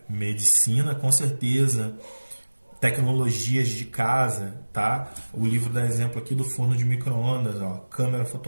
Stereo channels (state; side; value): inverted; both; correlation -1.00